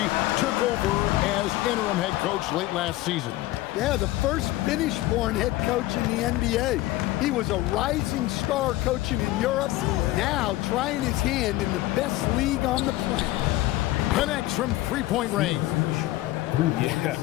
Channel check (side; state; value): right; quieter; 17.2 dB